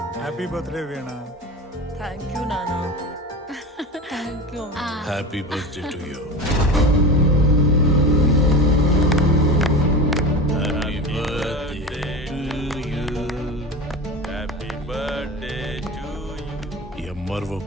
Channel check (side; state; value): both; normal; correlation 0.28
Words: Happy birthday Veena. Thank you నాన్న. Thank you. Happy birthday to you. Happy birthday to you. Happy birthday to you. MRO